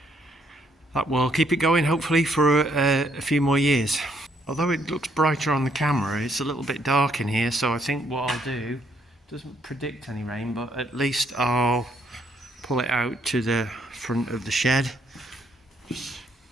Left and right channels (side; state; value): both; normal; correlation 0.70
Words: will keep it going, hopefully, for a few more years. Although it looks brighter on the camera, it's a little bit dark in here, so I think what I'll do, doesn't predict any rain, but at least I'll pull it out to the front of the shed. Just